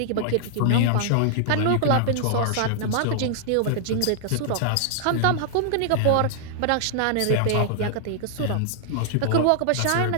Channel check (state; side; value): different; both; correlation -0.01